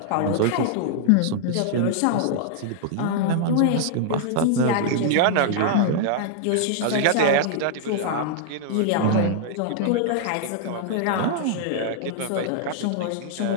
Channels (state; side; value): different; both; correlation -0.01